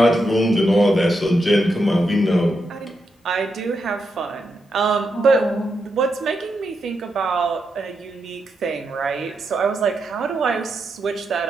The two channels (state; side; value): normal; both; correlation 0.84